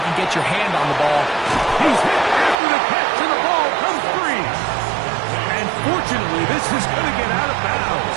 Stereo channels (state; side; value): drops out; left; at 2.6 s